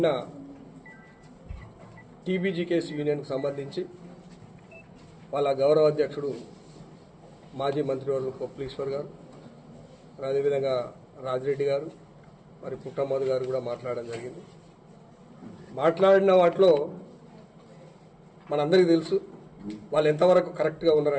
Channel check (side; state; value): both; identical; correlation 1.00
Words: టీబీజీకేఎస్ యూనియన్కు సంబంధించి వాళ్ళ గౌరవ అధ్యక్షుడు మాజీ మంత్రివర్గ పొప్పలీశ్వర్ గారు, అదేవిధంగా రాజిరెడ్డి గారు, మరి పుట్టమ్మద్ గారు కూడా మాట్లాడడం జరిగింది. మాట్లాడిన వాటిలో మనందరికీ తెలుసు వాళ్ళు ఎంతవరకు కరెక్ట్గా